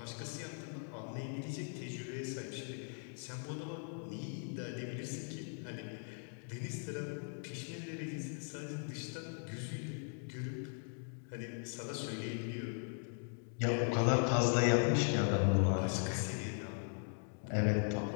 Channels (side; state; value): right; silent; 52 dB below the other